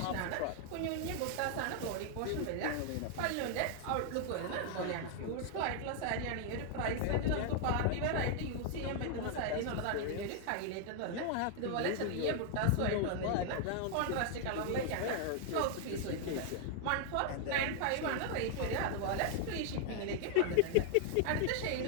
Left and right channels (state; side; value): different; both; correlation 0.00